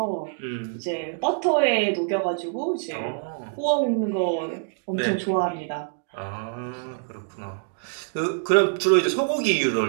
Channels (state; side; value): silent; left; digital silence